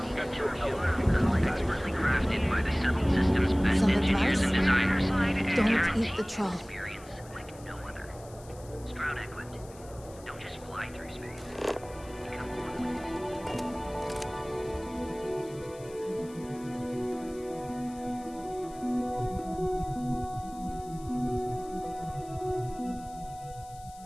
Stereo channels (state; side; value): noise; left; hiss, 22 dB below the sound